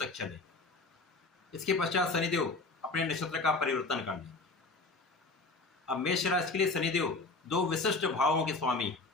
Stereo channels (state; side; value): quieter; right; 3.6 dB